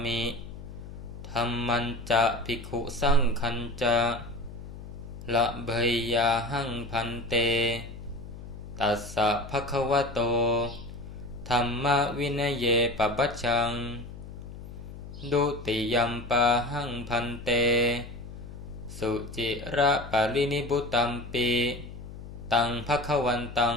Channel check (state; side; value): noise; left; hum, 13 dB below the sound